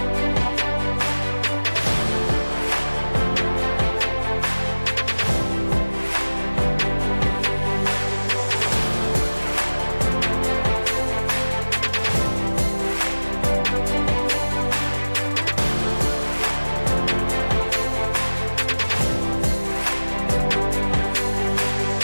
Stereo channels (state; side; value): inverted; both; correlation -1.00